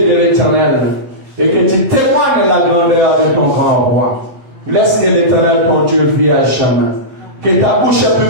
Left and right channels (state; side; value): late; left; 8.2 ms